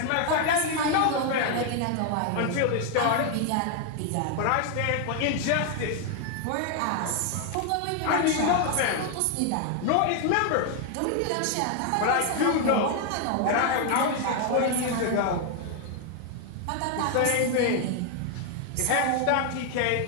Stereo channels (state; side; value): different; both; correlation 0.00